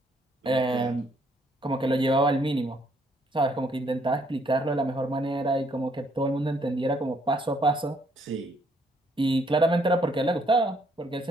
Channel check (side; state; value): both; normal; correlation 0.68